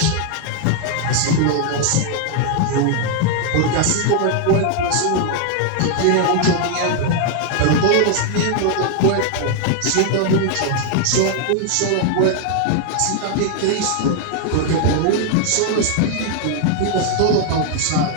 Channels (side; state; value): both; different; correlation 0.00